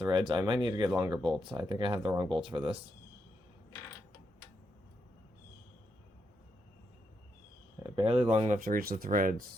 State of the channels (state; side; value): normal; both; correlation 0.81